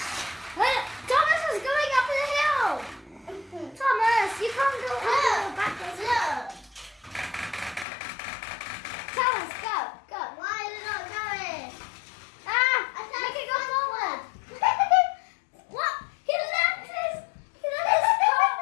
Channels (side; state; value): right; drops out; at 7.9 s